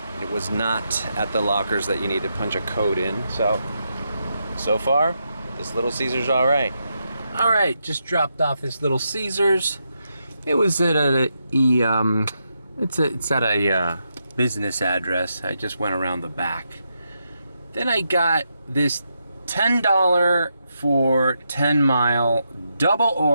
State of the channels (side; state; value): both; inverted; correlation -0.83